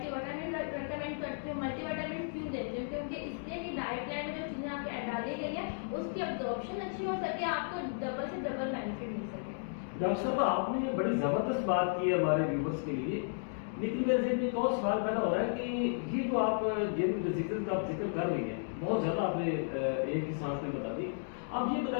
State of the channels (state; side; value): silent; right; digital silence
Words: وٹامن ریکمینڈ کرتی ہوں۔ ملٹی وٹامن کیوں دیتی ہوں؟ کیونکہ اس لیے کہ ڈائٹ پلان میں جو چیزیں آپ کو ڈالی گئی ہیں اس کی ابزارپشن اچھی ہو سکے، آپ کو ڈبل سے ڈبل بینیفٹ مل سکے۔ ڈاکٹر صاحب، آپ نے یہ بڑی زبردست بات کی ہے ہمارے ویورز کے لیے، لیکن میرے ذہن میں ایک اور سوال پیدا ہو رہا ہے کہ یہ جو آپ جن ڈیزیزز کا آپ ذکر کر رہی ہیں بہت زیادہ آپ نے ایک ہی سانس میں بتا دی، آپ یہ